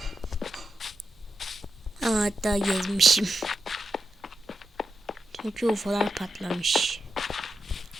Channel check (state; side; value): normal; both; correlation 0.87